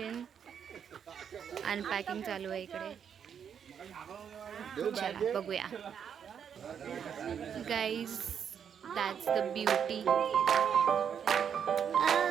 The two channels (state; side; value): quieter; left; 7.8 dB